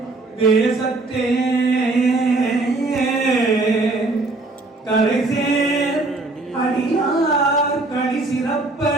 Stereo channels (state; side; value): quieter; left; 3.1 dB